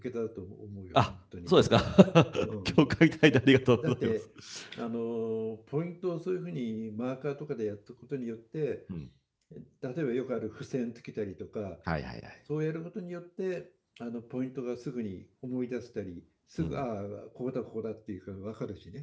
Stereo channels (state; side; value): identical; both; correlation 1.00